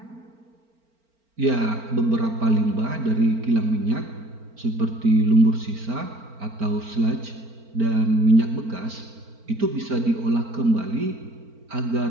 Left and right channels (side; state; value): left; late; 4.4 ms